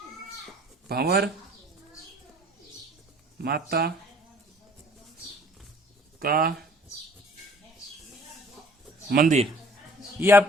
भंवर माता का मंदिर ये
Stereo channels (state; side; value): normal; both; correlation 0.54